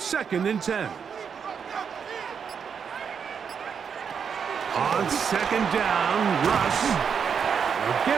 and 10. On 2nd down, Russ will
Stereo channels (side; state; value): left; quieter; 6.8 dB